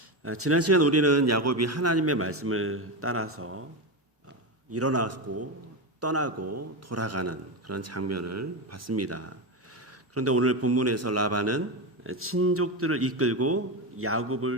지난 시간 우리는 야곱이 하나님의 말씀을 따라서 일어나고 떠나고 돌아가는 그런 장면을 봤습니다. 그런데 오늘 본문에서 라반은 친족들을 이끌고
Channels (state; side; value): normal; both; correlation 0.15